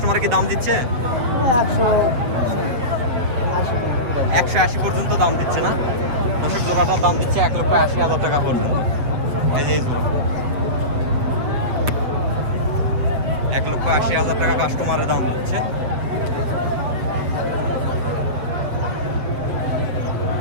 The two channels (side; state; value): left; late; 8.2 ms